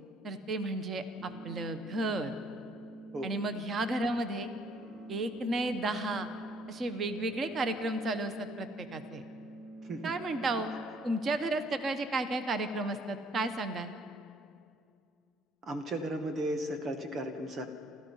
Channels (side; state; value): both; normal; correlation 0.63